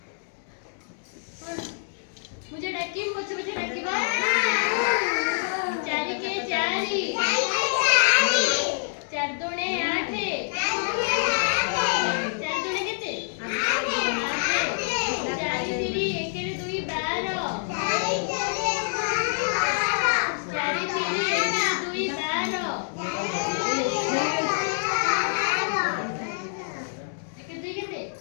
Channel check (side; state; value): right; silent; digital silence